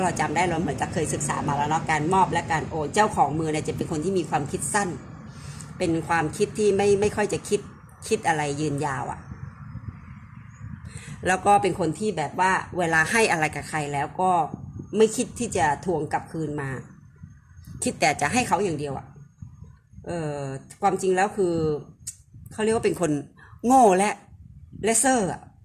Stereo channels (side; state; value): both; identical; correlation 1.00